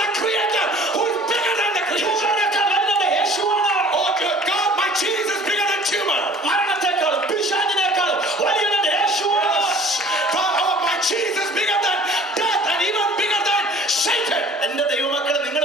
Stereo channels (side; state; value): both; normal; correlation 0.49